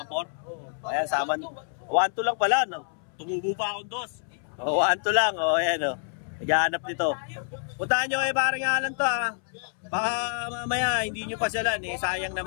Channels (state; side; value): silent; right; 60 dB below the other